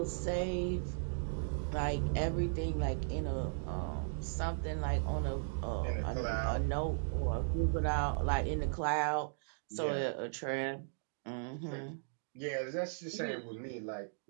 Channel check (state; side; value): silent; left; digital silence